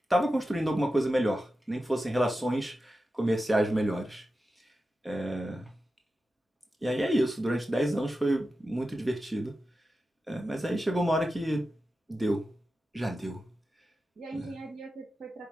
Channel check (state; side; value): normal; both; correlation 0.92